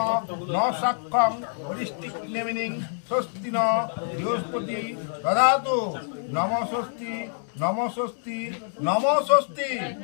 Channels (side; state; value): right; silent; digital silence